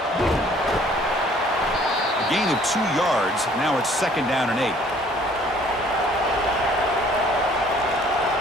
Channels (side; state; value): both; normal; correlation 0.57